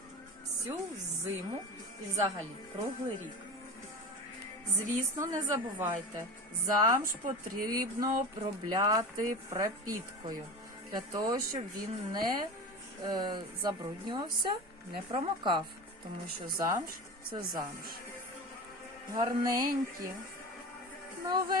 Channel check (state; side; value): normal; both; correlation 0.29